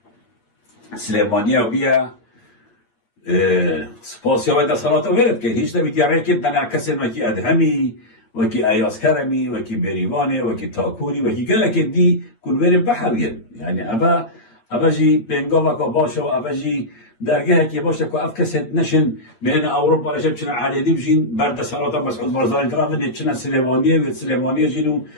سلیمانیه بیا سپاسی های دستالات رو ورد که هیچ نبید یعنی که تنعکس وکی ادهمی وکی ایاز کرمی وکی بریوانه وکی تاکوری وکی گله که دی کل ورد بحوین یعنی اوه جی بینگا وکا باشه و اوه جی درگه که باشه که اف کسید نشن بین اوروپا رشب چنان علیدی بشین برد سالات مسعود بارزانی کرام دید چنان سلیمانیه و سلیمانیه جینو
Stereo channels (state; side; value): late; right; 8.8 ms